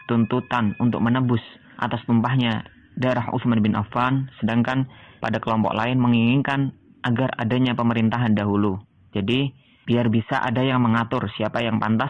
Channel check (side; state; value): both; identical; correlation 1.00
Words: tuntutan untuk menebus atas tumpahnya darah Utsman bin Affan, sedangkan pada kelompok lain menginginkan agar adanya pemerintahan dahulu. Jadi, biar bisa ada yang mengatur siapa yang